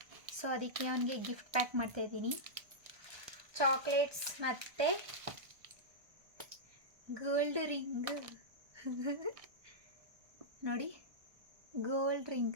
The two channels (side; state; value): left; late; 1.2 ms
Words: so ಅದಕ್ಕೆ ಅವನಿಗೆ ಗಿಫ್ಟ್ ಪ್ಯಾಕ್ ಮಾಡ್ತಾ ಇದ್ದೀನಿ. ಚಾಕ್ಲೇಟ್ಸ್ ಮತ್ತು ಗೋಲ್ಡ್ ರಿಂಗ್ ನೋಡಿ, ಗೋಲ್ಡ್